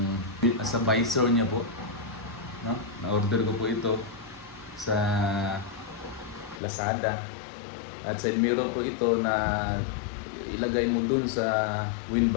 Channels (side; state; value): right; drops out; at 6.6 s